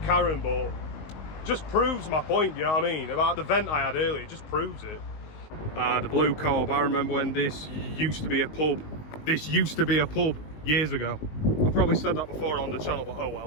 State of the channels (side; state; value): right; late; 19 ms